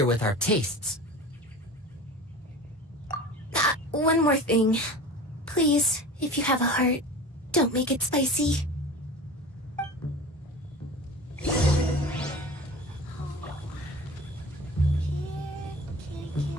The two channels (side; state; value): both; normal; correlation 0.37